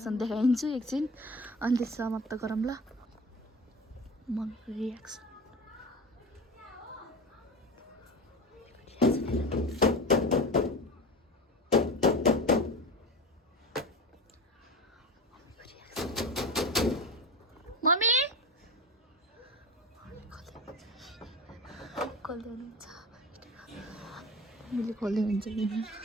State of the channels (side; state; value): both; normal; correlation 0.30